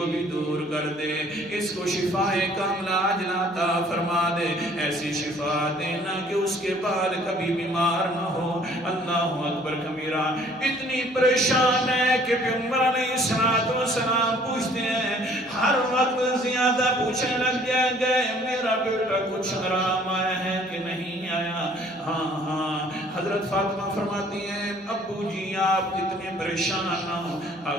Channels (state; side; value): normal; both; correlation 0.57